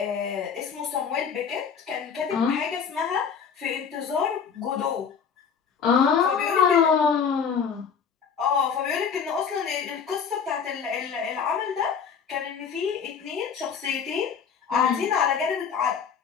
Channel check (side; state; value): right; quieter; 6.7 dB